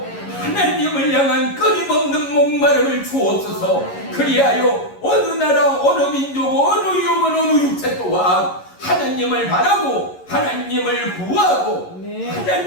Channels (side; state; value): right; late; 11 ms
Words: 하나님을 향한 끊임없는 목마름을 주옵소서. 그리하여 어느 나라, 어느 민족, 어느 영혼, 어느 육체 또한 하나님을 바라고 하나님을 구하고